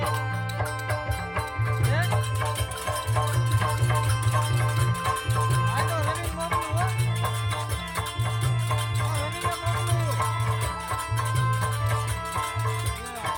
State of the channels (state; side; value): identical; both; correlation 1.00